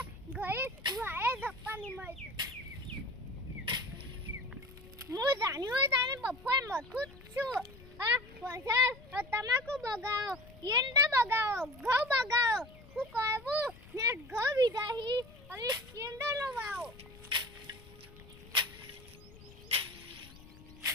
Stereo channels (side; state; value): left; noise; rumble, 20 dB below the sound